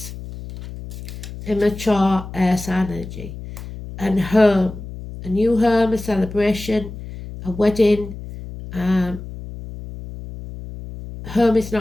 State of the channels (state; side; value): noise; left; hum, 12 dB below the sound